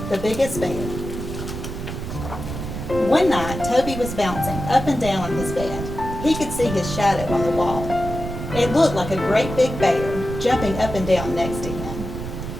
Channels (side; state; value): right; noise; rumble, 7 dB below the sound